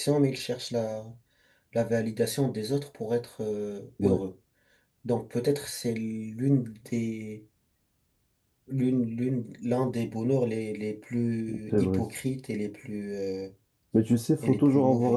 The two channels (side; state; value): both; identical; correlation 1.00